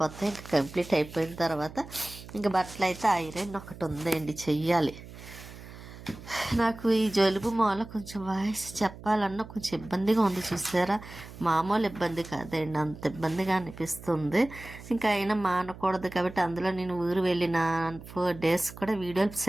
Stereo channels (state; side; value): noise; right; hum, 16 dB below the sound